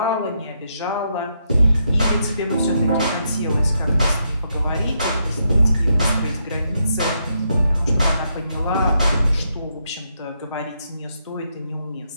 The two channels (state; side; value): inverted; both; correlation -0.79